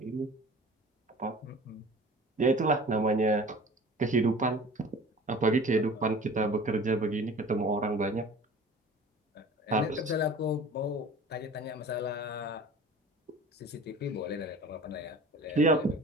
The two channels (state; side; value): normal; both; correlation 0.42